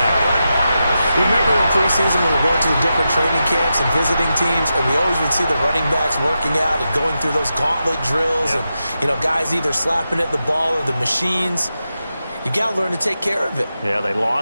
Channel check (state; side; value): inverted; both; correlation -0.89